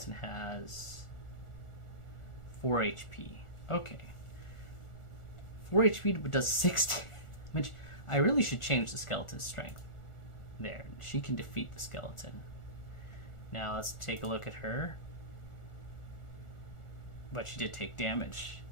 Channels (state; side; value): late; right; 1.4 ms